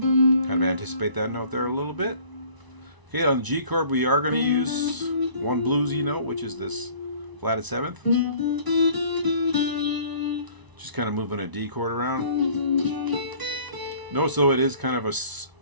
Kind of anticipate that note there a little bit. Okay, on the G chord we are going to use one bluesy note, which is this flatted seventh. Just kind of moving a D chord around. Notice though it is kind of a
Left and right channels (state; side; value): late; left; 1.0 ms